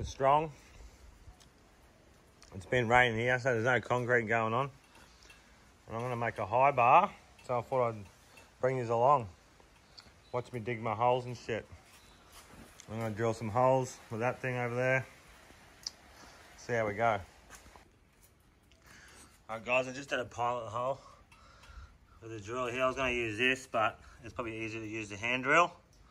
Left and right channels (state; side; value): identical; both; correlation 1.00